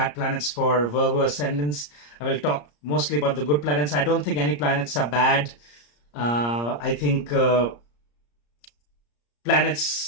planets for Virgo ascendants. I will talk mostly about the good planets. I don't think any planets are bad. I think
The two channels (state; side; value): late; right; 34 ms